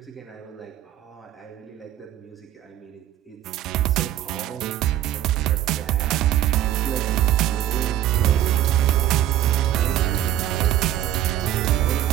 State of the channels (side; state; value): left; quieter; 12.2 dB